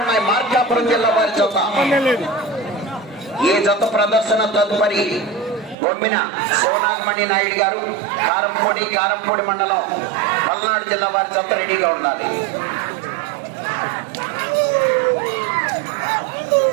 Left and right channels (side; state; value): left; drops out; at 5.8 s